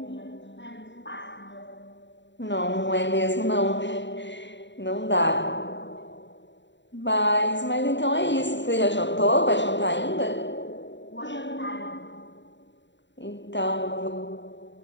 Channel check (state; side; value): late; right; 0.52 ms